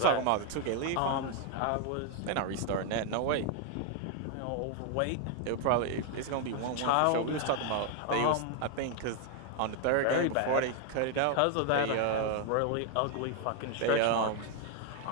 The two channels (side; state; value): both; different; correlation 0.00